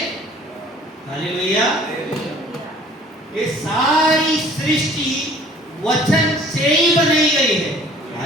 हालेलुया। ये सारी सृष्टि वचन से ही बनाई गई है।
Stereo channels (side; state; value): both; normal; correlation 0.52